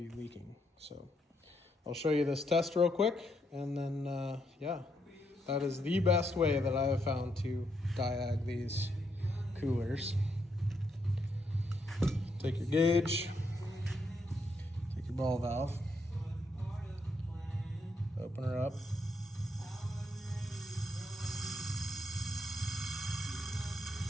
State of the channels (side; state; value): both; normal; correlation 0.77